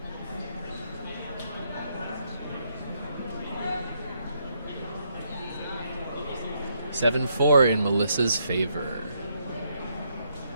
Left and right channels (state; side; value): inverted; both; correlation -0.75